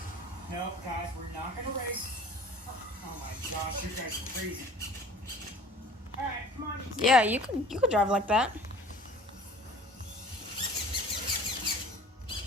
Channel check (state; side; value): normal; both; correlation 0.46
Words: No, guys, we're not gonna race. Oh my gosh, you guys are crazy. Alright, come on. Yeah, you could drive like that.